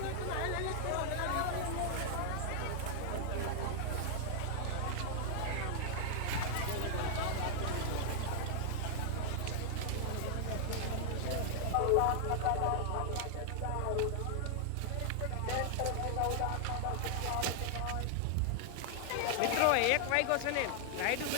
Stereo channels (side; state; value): both; different; correlation 0.00